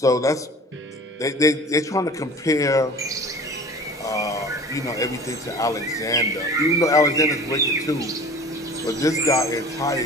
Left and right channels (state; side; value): normal; both; correlation 0.42